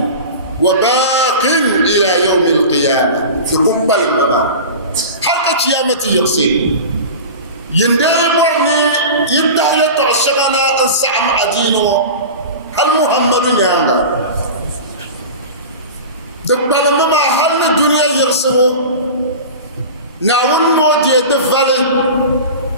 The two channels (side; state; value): both; inverted; correlation -0.32